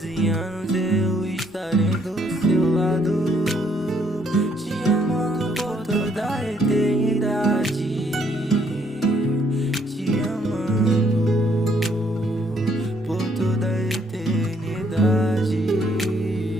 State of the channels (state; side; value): normal; both; correlation 0.68